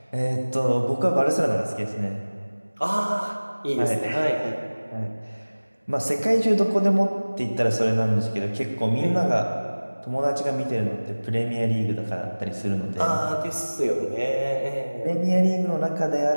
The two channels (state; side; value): inverted; both; correlation -1.00